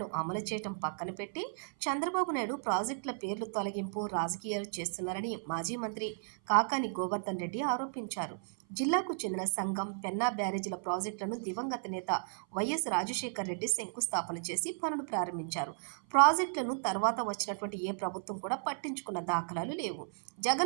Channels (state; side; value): silent; left; 55 dB below the other